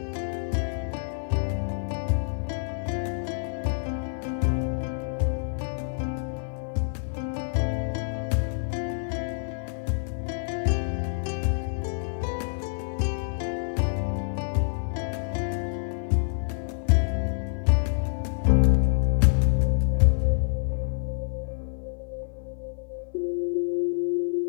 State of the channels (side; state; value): right; silent; 56 dB below the other